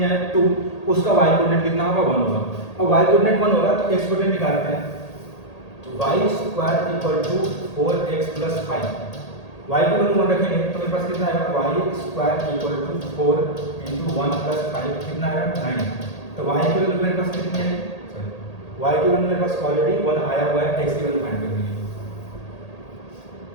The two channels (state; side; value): late; right; 1.8 ms